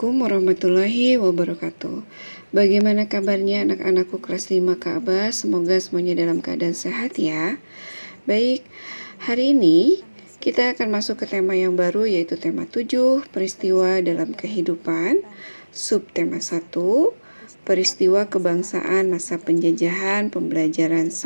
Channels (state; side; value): inverted; both; correlation -1.00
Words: warahmatullahi wabarakatuh. Bagaimana kabarnya anak-anakku kelas 5 Ka'bah? Semoga semuanya dalam keadaan sehat ya. Baik, hari ini kita akan masuk ke tema yang baru, yaitu tema 7, peristiwa dalam kehidupan. Subtema 1, peristiwa kebangsaan masa penjajahan pembelajaran